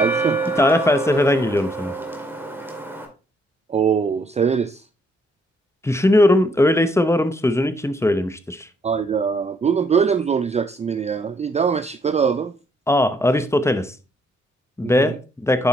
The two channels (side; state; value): both; normal; correlation 0.70